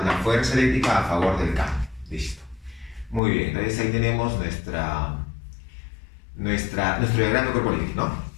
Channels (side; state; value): right; drops out; at 3.2 s